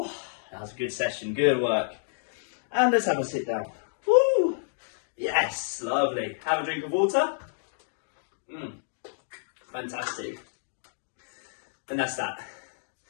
That was a good session. Good work. And let's have a sit down. Woo. Yes. Lovely. Have a drink of water. Fantastic. And that's that.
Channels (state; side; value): silent; right; digital silence